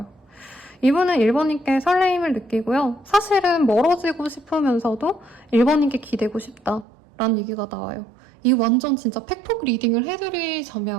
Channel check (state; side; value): drops out; left; at 6.9 s